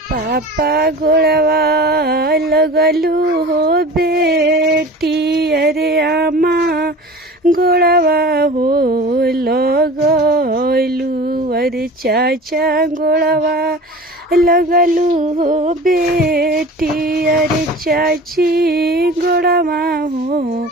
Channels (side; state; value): both; normal; correlation 0.38